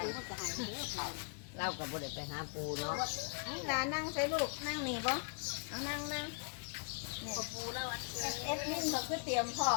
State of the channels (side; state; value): right; quieter; 39.3 dB